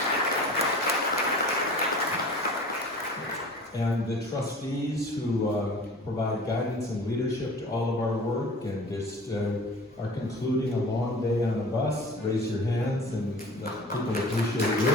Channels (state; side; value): normal; both; correlation 0.42